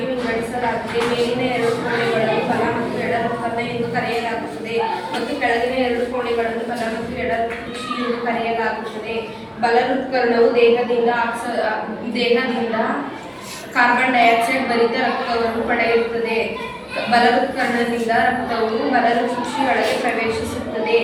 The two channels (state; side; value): identical; both; correlation 1.00